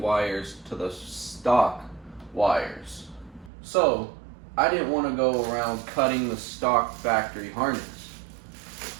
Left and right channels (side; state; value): left; drops out; at 3.5 s